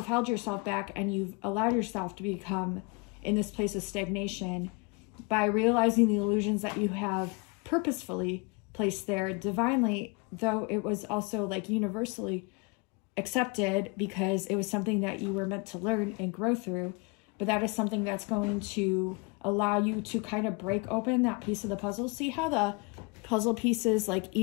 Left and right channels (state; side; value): quieter; right; 29.3 dB